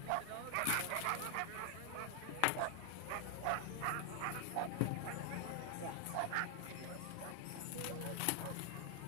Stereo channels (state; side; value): different; both; correlation 0.00